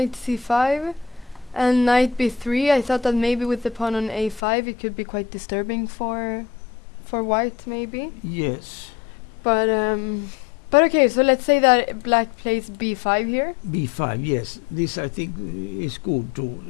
c5 and knight b3, I thought that maybe with the pawn on a5 it could be quite disturbing for for white maybe. Yes. But okay, so let's say that black plays b5 here. B5, yes. This I think is good too.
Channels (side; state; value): right; drops out; at 4.4 s